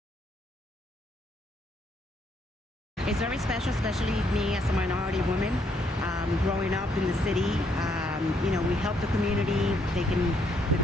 It's very special, especially me as a minority woman, growing up in the city. You know, we help the community. The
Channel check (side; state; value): both; normal; correlation 0.72